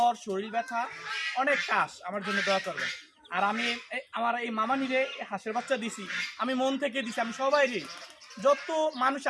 শরীর ব্যথা, অনেক কাশ, আমার জন্য দোয়া করবেন। আর আমি আমার এই মামানিরে হাঁসের বাচ্চা দিছি, আমি মন থেকে দিছি। আমি সবাই যত মানুষ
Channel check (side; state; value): both; identical; correlation 1.00